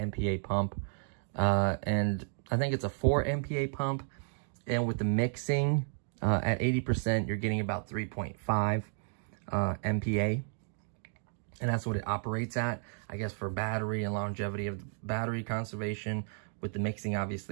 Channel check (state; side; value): silent; left; digital silence